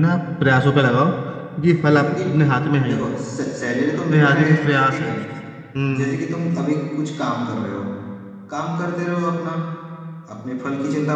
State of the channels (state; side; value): identical; both; correlation 1.00